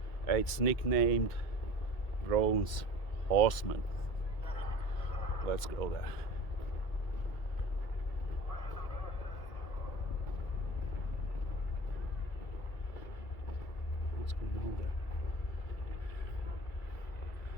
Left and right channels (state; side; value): late; right; 2.3 ms